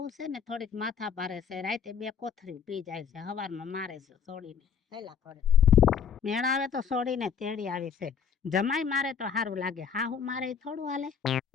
છે ને થોડીક માથા ભારે છે રાતે 2 કોથરી પી જાય છે હવારમાં મારે છે સોડીને હેલા કરે મેળ આવે તો સોડીને તેડી આવી છે જમાઈ મારે તો સારું લાગે હાહુ મારે ઈ થોડું હાલે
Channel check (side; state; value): right; quieter; 7.2 dB